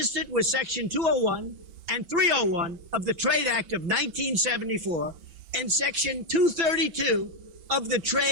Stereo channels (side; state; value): left; late; 5.9 ms